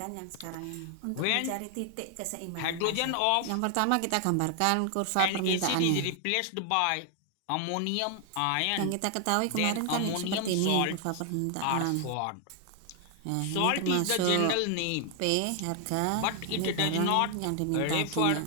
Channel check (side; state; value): both; different; correlation 0.00